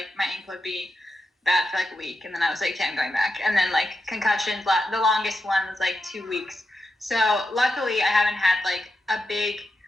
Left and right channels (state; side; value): normal; both; correlation 0.88